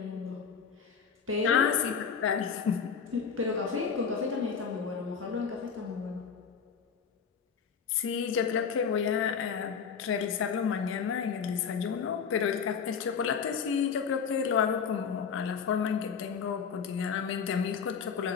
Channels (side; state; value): right; quieter; 6.6 dB